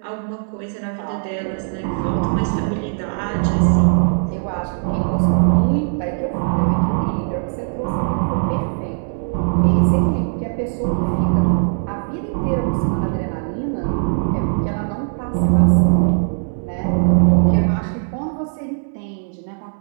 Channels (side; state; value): left; silent; 66 dB below the other